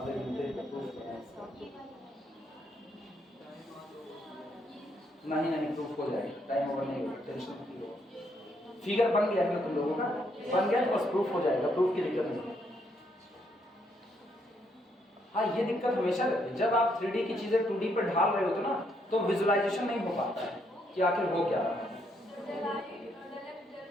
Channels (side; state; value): both; normal; correlation 0.74